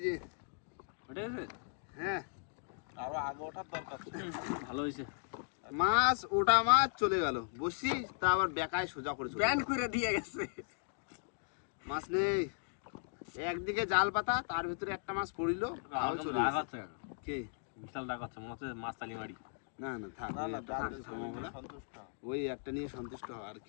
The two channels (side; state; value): right; silent; digital silence